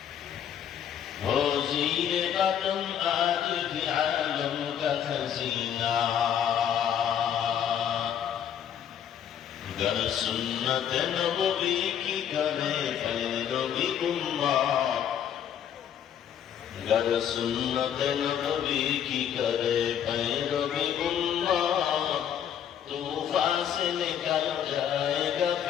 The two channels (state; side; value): quieter; right; 9.2 dB